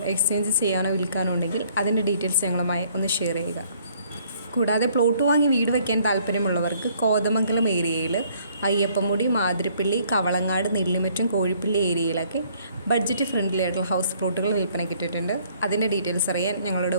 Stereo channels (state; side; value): inverted; both; correlation -0.62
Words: എക്സ്ചേഞ്ച് ചെയ്യാനോ വിൽക്കാനോ ഉണ്ടെങ്കിൽ അതിൻ്റെ ഡീറ്റെയിൽസ് ഞങ്ങളുമായി ഒന്ന് ഷെയർ ചെയ്യുക. കൂടാതെ പ്ലോട്ട് വാങ്ങി വീട് വയ്ക്കാൻ താല്പര്യമുള്ളവർക്ക് കോതമംഗലം ഏരിയയിൽ അയ്യപ്പമുടി, മാതിരപ്പള്ളി, കവളങ്ങാട്, നെല്ലിമറ്റും കോഴിപ്പള്ളി ഏരിയയിലൊക്കെ ബഡ്ജറ്റ് ഫ്രണ്ട്ലി ആയിട്ടുള്ള ഹൗസ് പ്ലോട്ടുകൾ വിൽപ്പനയ്ക്ക് ഇട്ടിട്ടുണ്ട്. അതിൻ്റെ ഡീറ്റെയിൽസ് അറിയാൻ ഞങ്ങളുടെ